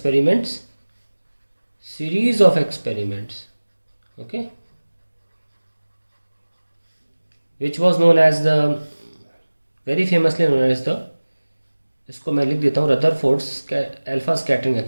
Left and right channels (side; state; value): both; inverted; correlation -1.00